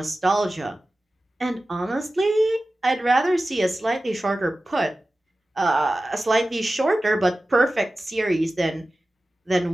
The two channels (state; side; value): normal; both; correlation 0.95